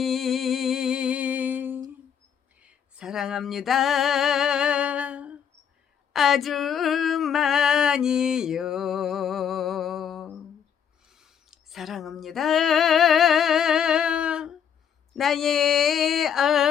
사랑합니다. 아주 많이요. 사랑합니다. 나의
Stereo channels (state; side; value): quieter; right; 8.1 dB